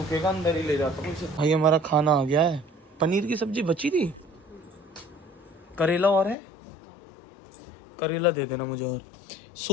अंदर ही ले जाता हूँ इसे। भाई हमारा खाना आ गया है, पनीर की सब्जी बची थी, करेला और है, करेला दे देना मुझे, और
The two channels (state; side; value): drops out; right; at 6.4 s